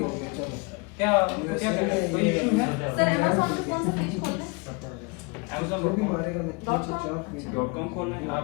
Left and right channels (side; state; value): right; quieter; 30.2 dB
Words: गया। चलो क्या क्या कोई इशू है सर अमेज़न पे कौन सा पेज खोलना है? Amazon जो भी मारेगा मैं नीचे चाप .com खोलना है आप,